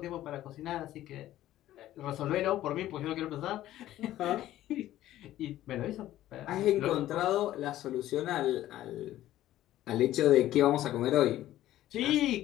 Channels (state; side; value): quieter; right; 13.9 dB